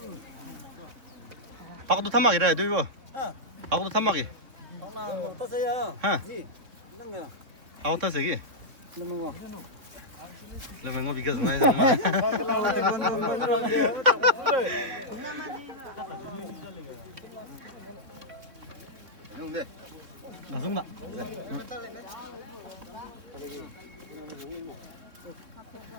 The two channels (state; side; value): late; left; 3.9 ms